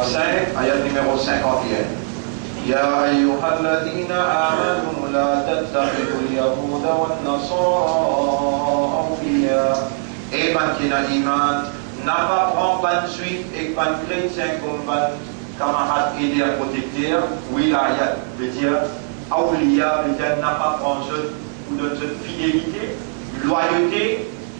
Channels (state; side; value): silent; left; 60 dB below the other